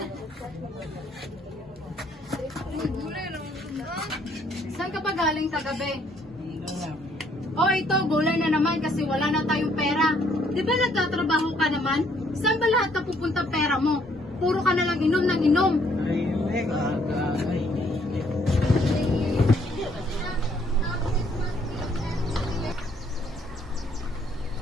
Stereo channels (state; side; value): normal; both; correlation 0.66